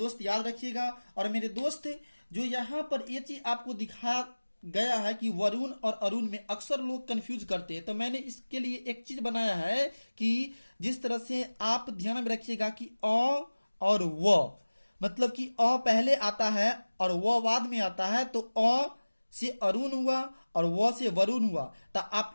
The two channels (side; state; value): both; inverted; correlation -1.00